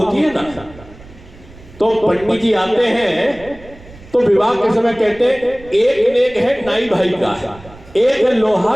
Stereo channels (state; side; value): noise; right; rumble, 21 dB below the sound